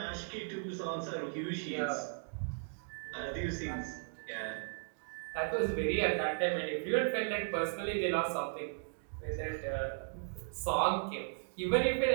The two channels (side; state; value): left; silent; digital silence